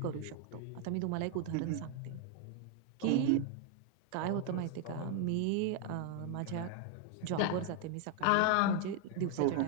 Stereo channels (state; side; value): different; both; correlation 0.00